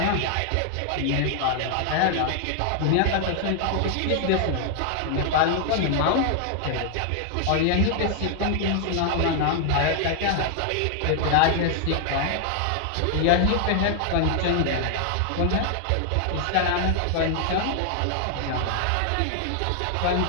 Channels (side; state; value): both; different; correlation 0.00